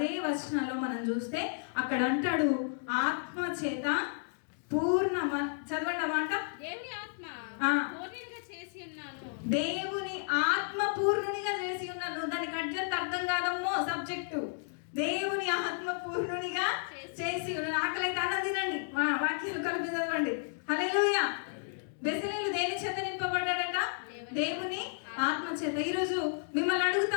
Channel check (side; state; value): right; silent; digital silence